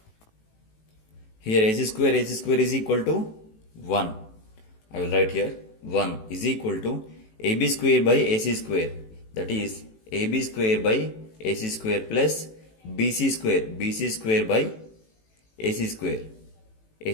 Here AC square is equal to 1. I will write here 1 is equal to AB square by AC square, that is AB square by AC square plus BC square by AC square.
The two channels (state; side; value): late; right; 18 ms